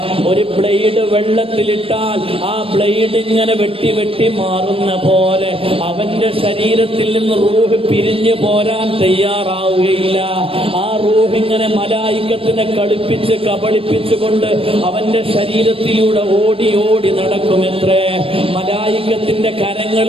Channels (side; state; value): left; late; 0.27 ms